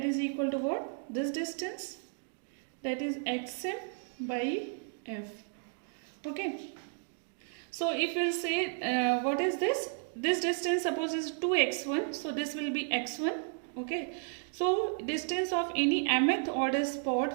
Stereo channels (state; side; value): silent; left; 56 dB below the other